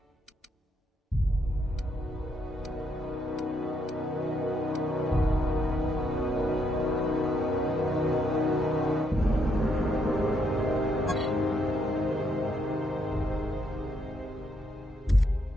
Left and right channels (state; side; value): normal; both; correlation 0.76